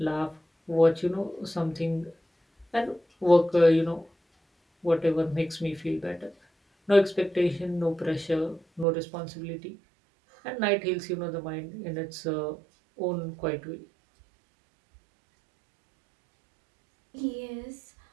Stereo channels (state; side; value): drops out; left; at 8.8 s